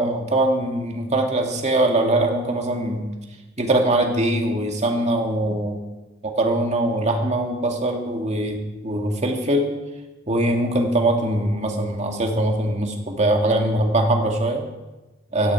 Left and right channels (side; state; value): both; normal; correlation 0.45